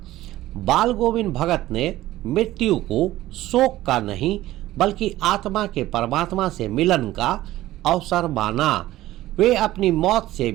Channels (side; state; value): left; quieter; 15.5 dB